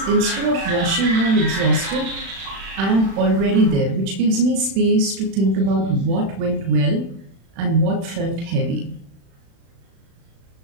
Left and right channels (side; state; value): left; late; 36 ms